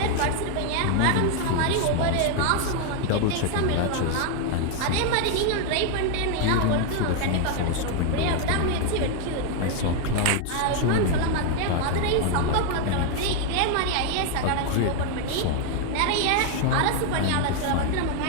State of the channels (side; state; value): both; different; correlation 0.00